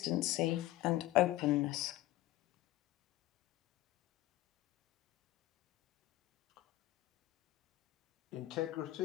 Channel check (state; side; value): quieter; right; 16.0 dB